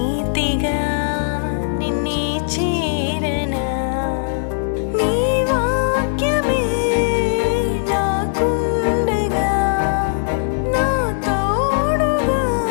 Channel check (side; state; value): right; silent; digital silence